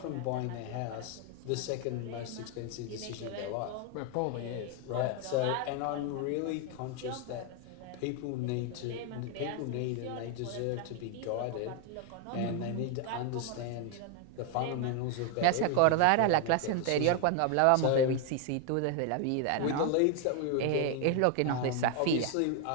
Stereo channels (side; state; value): both; different; correlation 0.01